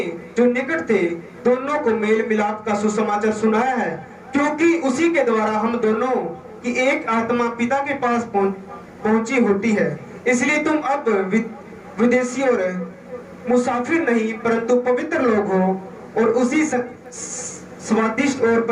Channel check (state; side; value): identical; both; correlation 1.00